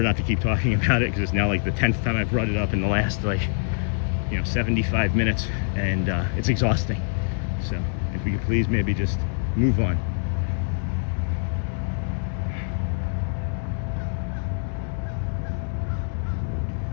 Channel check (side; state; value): right; silent; digital silence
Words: not to keep talking about it because it's now like the 10th time I've brought it up in the last 75 minutes, and it's exhausting. So if we could please maybe just move on.